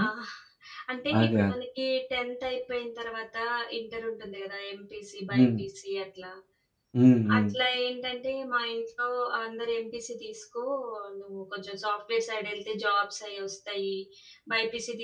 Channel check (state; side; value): identical; both; correlation 1.00